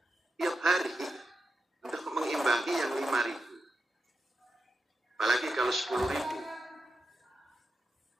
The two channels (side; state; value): both; normal; correlation 0.89